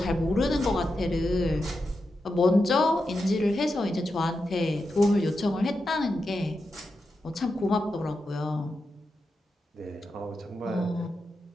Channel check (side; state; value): both; normal; correlation 0.88